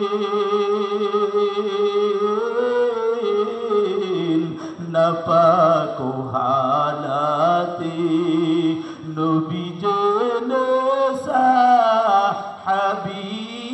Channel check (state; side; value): identical; both; correlation 1.00